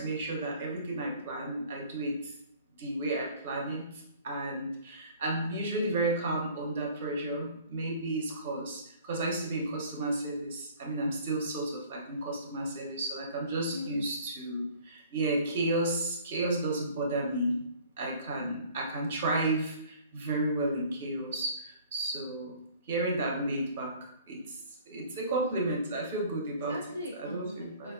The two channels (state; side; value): inverted; both; correlation -0.51